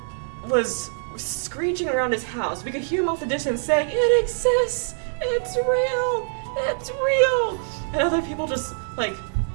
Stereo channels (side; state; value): left; silent; digital silence